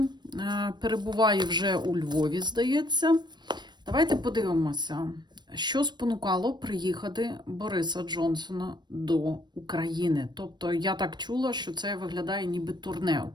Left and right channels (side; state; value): left; late; 0.21 ms